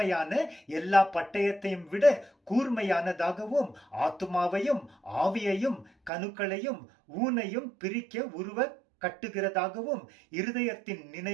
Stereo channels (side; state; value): left; drops out; at 6.1 s